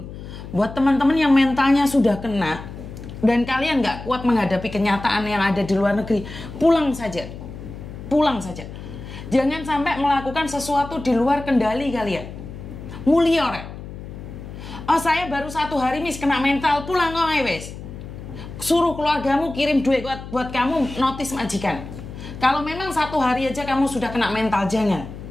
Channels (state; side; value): noise; left; hum, 12 dB below the sound